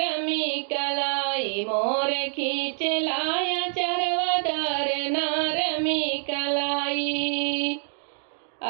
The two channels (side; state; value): left; silent; 61 dB below the other